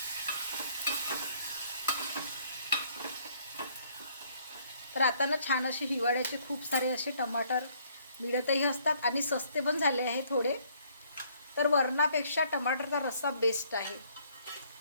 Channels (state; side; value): inverted; both; correlation -0.64